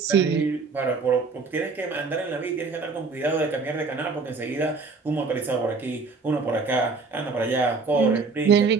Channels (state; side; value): quieter; left; 4.4 dB